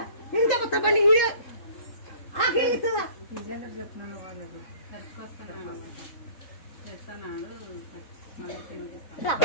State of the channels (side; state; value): right; late; 3.8 ms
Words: ఇంత కొత్త బండి ఆకి ఇస్తుందా? చెప్తున్నాను